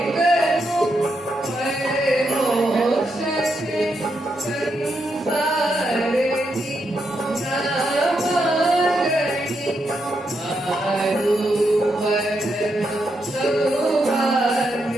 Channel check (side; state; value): both; normal; correlation 0.82